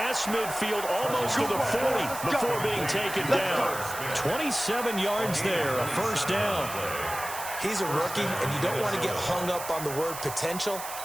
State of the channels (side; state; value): right; noise; hiss, 9 dB below the sound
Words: midfield almost to the 40 before being taken down. 27 yards there, a 1st down. He's a rookie, and you don't want to get hung up on the word potential.